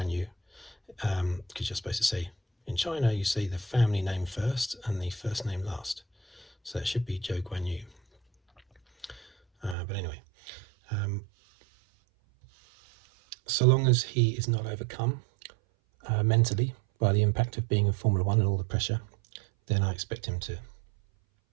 Yu, because you're supposed to say, in China, you say the family name first and the first name last. So it should be Zhou Guan Yu. But anyway, so long as he is not overcome mentally by the impact of being in Formula 1 and all the pressure, then I expect him to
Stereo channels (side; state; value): left; drops out; at 9.8 s